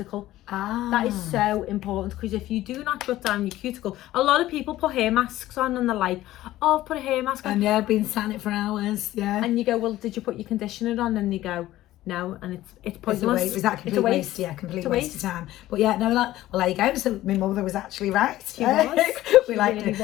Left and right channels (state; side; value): quieter; right; 15.2 dB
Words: That is so important, because if you do not shut down your cuticle, a lot of people put hair masks on and they're like, oh, I've put a hair mask on. And yeah, I've been sat it for hours, yeah. And you go, well, did you put your conditioner on? And they go, no, and it's pointless. Is that complete waste? Yeah, complete waste of time. But yeah, no, well, there you go. So my mother was actually right. She was. We liked it.